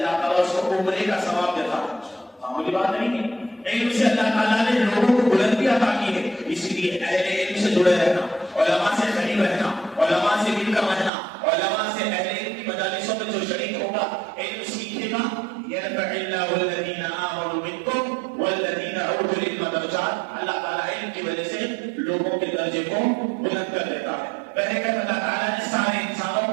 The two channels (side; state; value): left; drops out; at 11.1 s